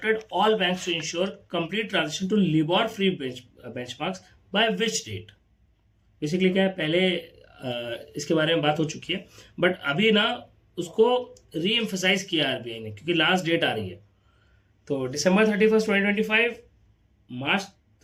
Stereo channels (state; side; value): identical; both; correlation 1.00